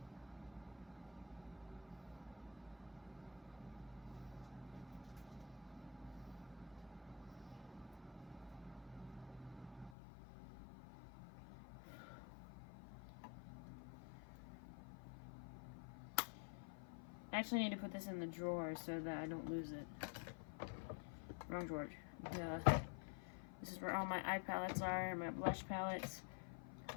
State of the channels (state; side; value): drops out; right; at 9.9 s